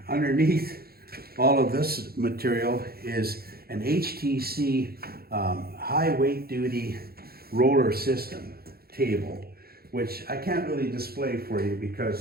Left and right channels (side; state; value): left; late; 0.45 ms